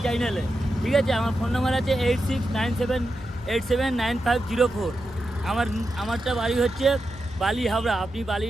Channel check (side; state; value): both; normal; correlation 0.88